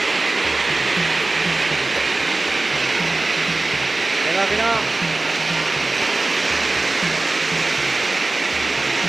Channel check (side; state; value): left; quieter; 3.1 dB